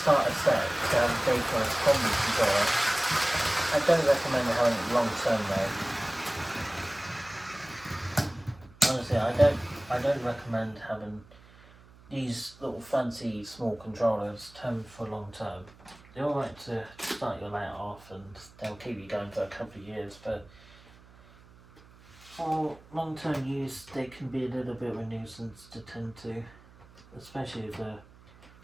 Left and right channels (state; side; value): noise; right; hum, 24 dB below the sound